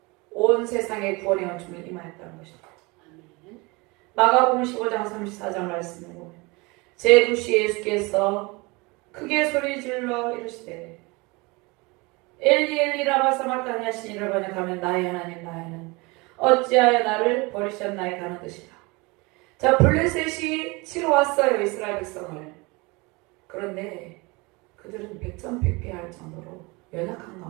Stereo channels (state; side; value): quieter; left; 25.9 dB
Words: 온 세상의 구원의 은총을 임하였다는 것입니다. 마가복음 15장 34장 말씀을 보면 제9시 예수께서 크게 소리질러 이르시되 엘리 엘리 라마 사마르다니 하신 이를 번역하면 나의 하나님 나의 하나님 어찌하여 나를 버리셨나이까 하는 뜻이다. 자, 블레셋이 치러 왔어요. 이스라엘 백성을. 그런데 그들은 백전백패할 정도로 연약한